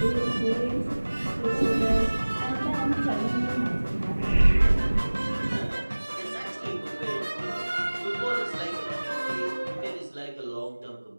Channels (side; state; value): both; inverted; correlation -1.00